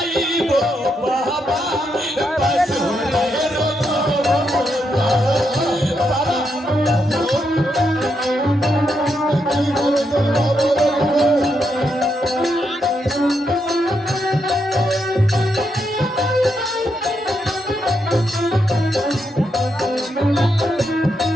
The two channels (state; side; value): normal; both; correlation 0.81